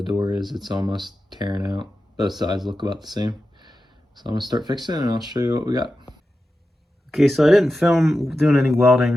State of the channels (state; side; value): normal; both; correlation 0.92